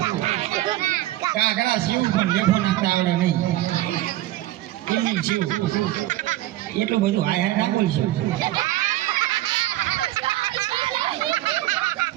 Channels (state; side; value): quieter; left; 15.7 dB